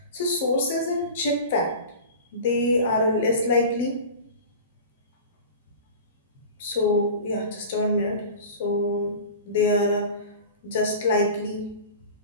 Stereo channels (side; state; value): both; inverted; correlation -0.35